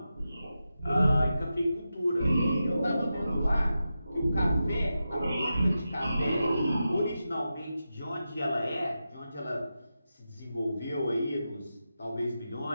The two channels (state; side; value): inverted; both; correlation -0.91